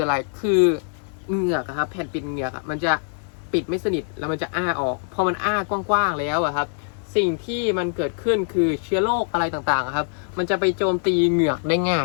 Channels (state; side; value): silent; right; 59 dB below the other